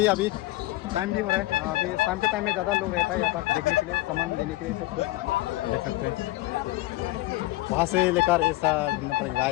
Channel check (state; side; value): quieter; right; 18.3 dB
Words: अभी टाइम भी हो रहा है अभी शाम के टाइम में ज़्यादा लोग रहता है यहाँ पर देखने के लिए सामान लेने के लिए सब कुछ देख सकते हैं वहाँ से लेकर ऐसा